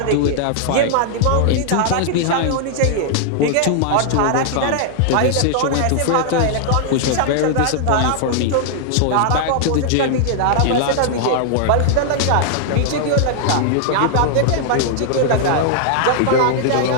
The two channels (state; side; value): different; both; correlation -0.01